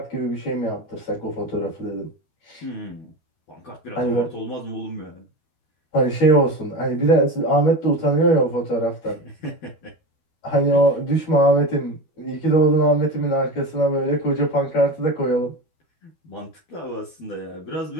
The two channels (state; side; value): late; right; 12 ms